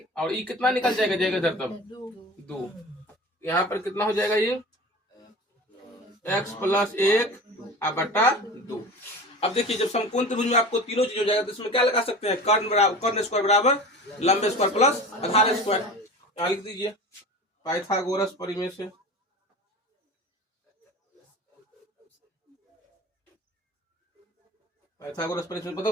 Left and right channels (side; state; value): both; normal; correlation 0.35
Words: और ये कितना निकल जाएगा इधर तब 2। यहाँ पर कितना हो जाएगा ये x प्लस 1 बटा 2। अब देखिए जब समकोण त्रिभुज में आपको तीनों चीज हो जाएगा तो इसमें क्या लगा सकते हैं, कर्ण स्क्वायर बराबर लंबे स्क्वायर प्लस आधार स्क्वायर। यहाँ लिख दीजिए पाइथागोरस परिमेय से। पाइथागोरस परिमेय से